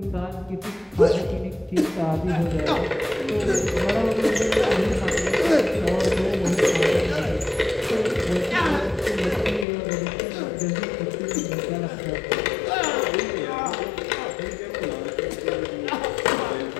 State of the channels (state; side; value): drops out; right; at 9.7 s